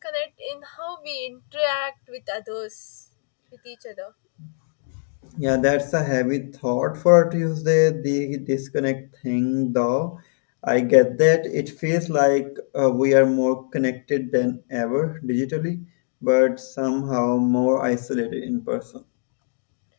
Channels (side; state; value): right; silent; 63 dB below the other